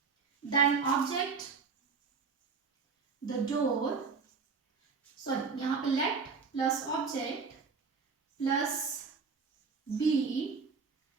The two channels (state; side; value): quieter; left; 5.1 dB